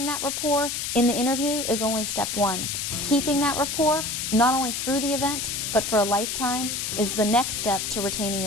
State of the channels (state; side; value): noise; left; hiss, 3 dB below the sound